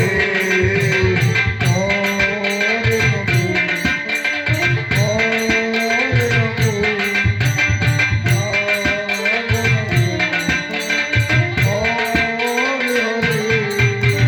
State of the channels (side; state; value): both; identical; correlation 1.00